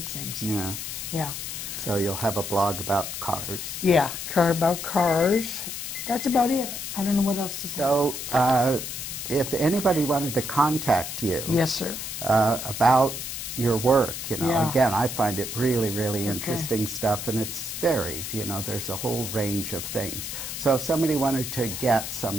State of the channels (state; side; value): noise; left; hiss, 6 dB below the sound